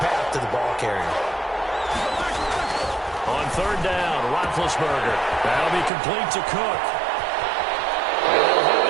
path to the ball carrier. On 3rd down, Roethlisberger. That'll be complete to Cook. And they'll have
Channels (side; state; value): left; drops out; at 5.9 s